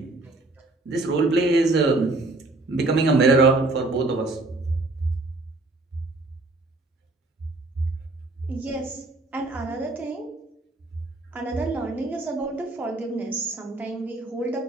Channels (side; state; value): left; quieter; 3.0 dB